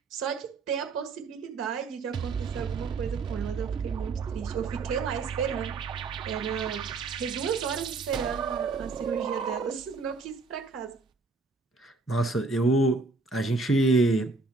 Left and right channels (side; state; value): left; quieter; 3.9 dB